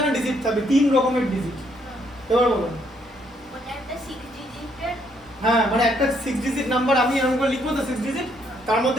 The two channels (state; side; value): normal; both; correlation 0.71